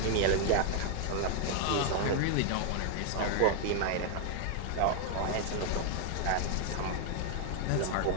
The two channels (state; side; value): different; both; correlation 0.00